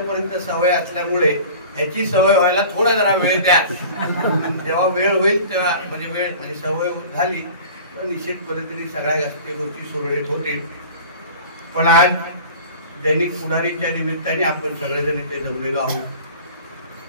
सवय असल्यामुळे ह्याची सवय व्हायला थोडा जरा वेळ द्या। जेव्हा वेळ होईल तेव्हा म्हणजे सवय झाली तर निश्चित पद्धतीने सगळ्या गोष्टी सुरळीत होतील। पण आज दैनिक पुढारीच्या निमित्ताने आपण सगळेजण इथे जमलेलो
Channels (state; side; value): inverted; both; correlation -0.41